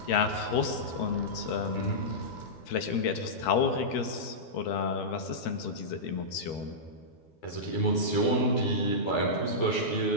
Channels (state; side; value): late; right; 13 ms